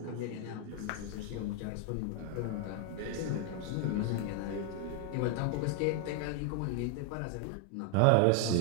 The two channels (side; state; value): both; different; correlation 0.00